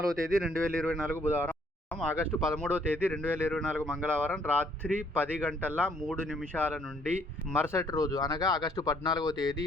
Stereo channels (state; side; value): normal; both; correlation 0.65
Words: తేదీ 2024 బుధవారం, ఆగస్టు 13వ తేదీ 2024 మంగళవారం రాత్రి 10 గంటల 3 నిమిషాల నుండి మరుసటి రోజు అనగా ఆగస్టు 14వ తేదీ